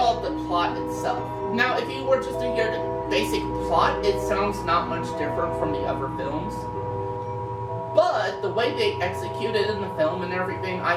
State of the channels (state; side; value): identical; both; correlation 1.00